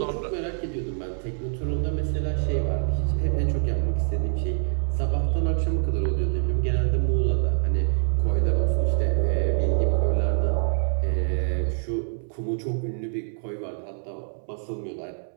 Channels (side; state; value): left; silent; 61 dB below the other